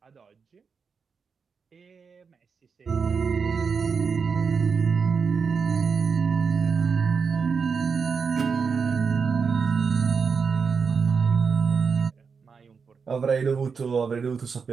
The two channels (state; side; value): quieter; left; 5.6 dB